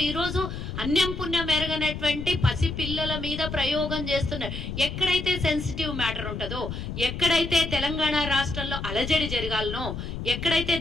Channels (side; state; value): left; noise; rumble, 6 dB below the sound